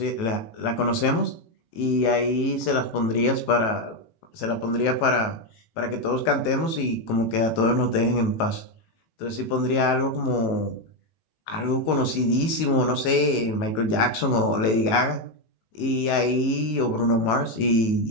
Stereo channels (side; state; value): right; late; 19 ms